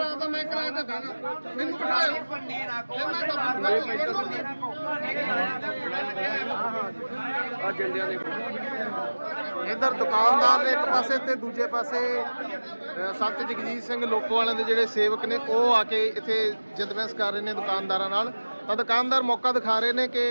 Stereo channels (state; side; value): inverted; both; correlation -1.00